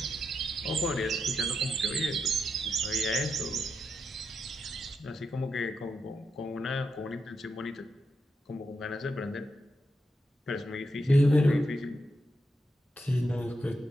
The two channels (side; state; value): both; normal; correlation 0.84